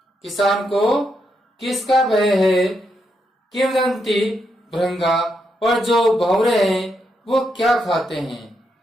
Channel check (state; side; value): normal; both; correlation 0.81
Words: किसान को किसका भय है। किम दंती भृंगा, और जो भौरे हैं वो क्या खाते हैं।